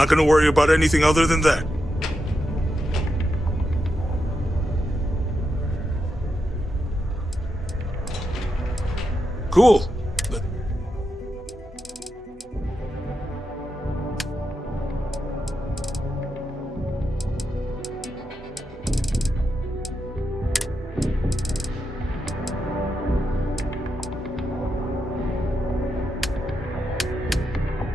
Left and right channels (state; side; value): normal; both; correlation 0.86